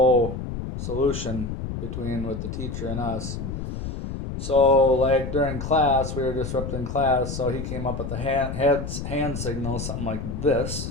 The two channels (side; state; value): left; noise; rumble, 6 dB below the sound